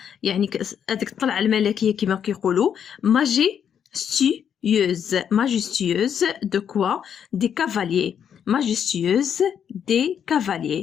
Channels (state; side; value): quieter; right; 8.3 dB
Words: يعني هذيك الطلعه الملكيه كما كيقولوا. ماجيستيوز دو كوا؟ دي كافاليي. ماجيستيوز دي